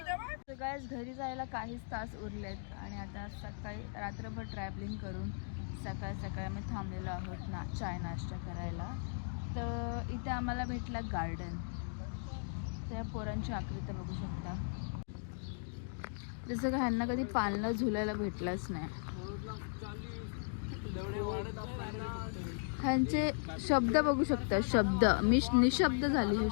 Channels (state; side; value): silent; right; digital silence